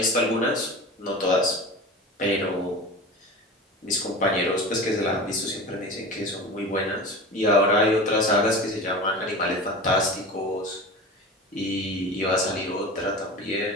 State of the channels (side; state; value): both; normal; correlation 0.32